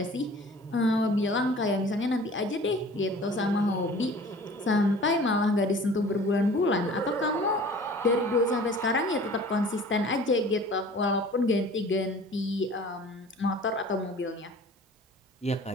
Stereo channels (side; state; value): both; normal; correlation 0.46